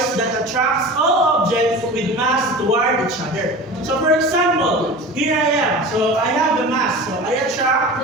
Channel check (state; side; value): normal; both; correlation 0.35